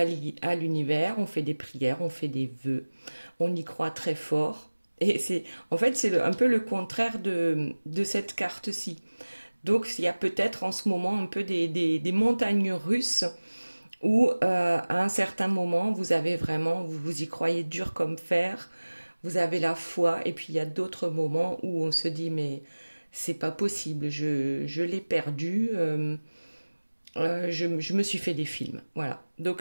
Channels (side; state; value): both; inverted; correlation -1.00